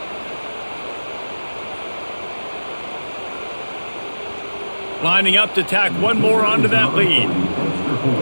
Lining up to tack one more onto that lead.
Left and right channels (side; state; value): both; inverted; correlation -1.00